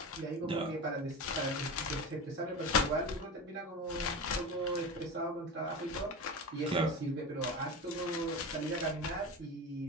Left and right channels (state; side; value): normal; both; correlation 0.26